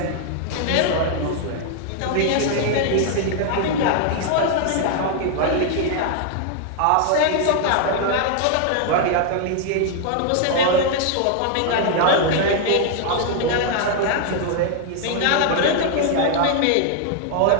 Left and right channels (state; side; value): different; both; correlation 0.00